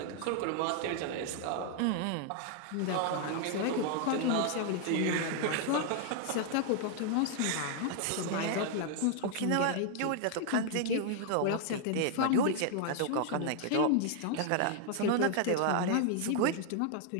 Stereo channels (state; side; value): different; both; correlation 0.00